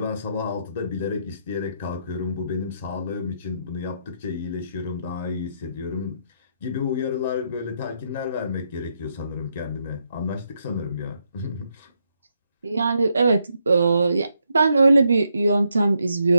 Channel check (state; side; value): inverted; both; correlation -0.78